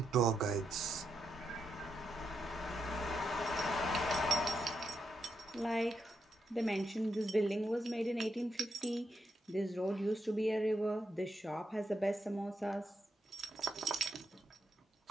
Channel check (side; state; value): both; normal; correlation 0.83